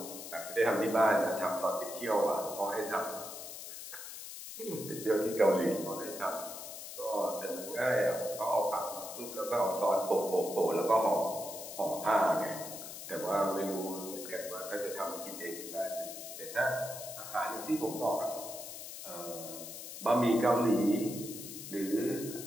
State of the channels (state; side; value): noise; left; hiss, 10 dB below the sound